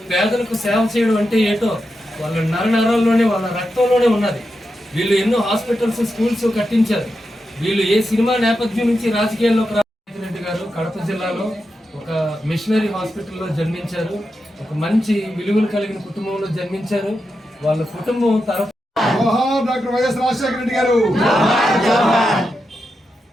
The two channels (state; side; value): normal; both; correlation 0.88